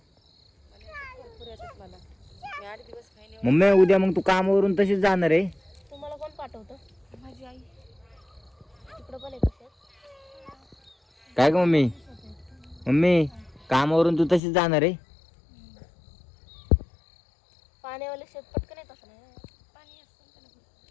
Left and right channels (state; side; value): drops out; right; at 14.4 s